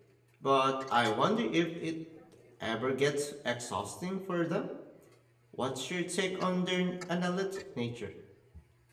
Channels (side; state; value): both; identical; correlation 1.00